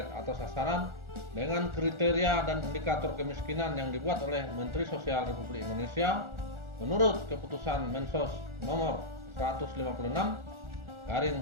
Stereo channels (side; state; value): left; late; 1.4 ms